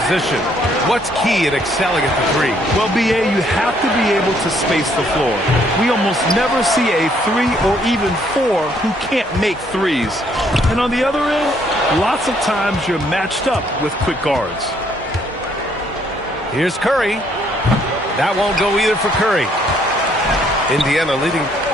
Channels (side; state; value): both; normal; correlation 0.67